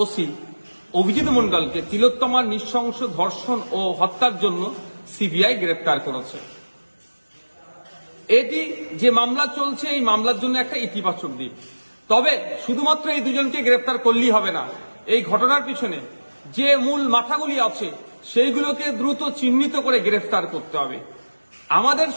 ওসি অভিজিৎ মণ্ডলকে তিলোত্তমার নৃশংস ধর্ষণ ও হত্যার জন্য সিবিআই গ্রেপ্তার করেছে। এটি যে মামলা চলছে, এই মামলার জন্য একটা ইতিবাচক দিক। তবে শুধুমাত্র এই দুজনকে গ্রেপ্তার করলেই হবে না, এই ঘটনার পিছনে যে মূল মাথাগুলি আছে সেইগুলোকে দ্রুত চিহ্নিত করে গ্রেফতার করতে হবে। আমাদের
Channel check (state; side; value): inverted; both; correlation -1.00